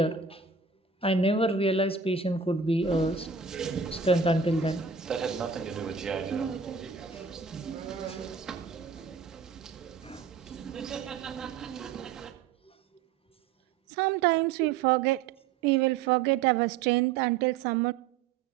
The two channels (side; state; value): left; quieter; 5.7 dB